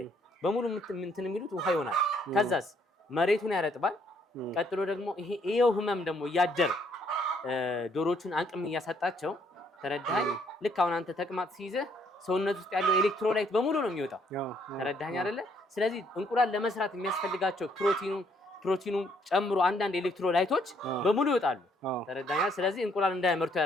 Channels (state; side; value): normal; both; correlation 0.67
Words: በሙሉ እንትን የሚሉት ውሃ ይሆናል። ከዛስ መሬቱን ያረጥባል። ቀጥሎ ደግሞ ይሄው ህመም ደግሞ እያደር ዶሮቹን አቅም እያሳጣቸው ተረዳኝ። ልክ አሁን አንተ ተቅማጥ ሲይዝህ ሰውነት ውስጥ ያለው ኤሌክትሮላይት በሙሉ ነው የሚወጣው። ተረዳኝ አይደለ? ስለዚህ እንቁላል ለመስራት የሚያስፈልጋቸው ፕሮቲኑ ጨምሮ አንዳንድ ኤሌክትሮላይቶች በሙሉ ይወጣሉ። ተረዳኛ? ስለዚህ እንቁላል እንዳያመርቱ